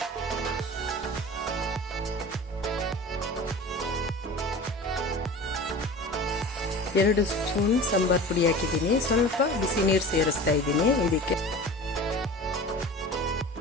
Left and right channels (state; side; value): normal; both; correlation 0.37